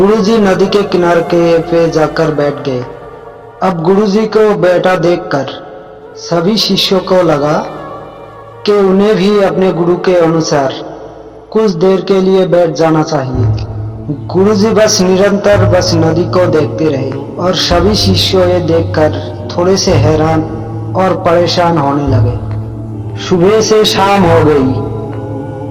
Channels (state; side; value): identical; both; correlation 1.00